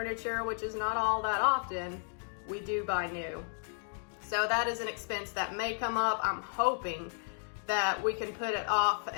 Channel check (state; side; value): silent; right; digital silence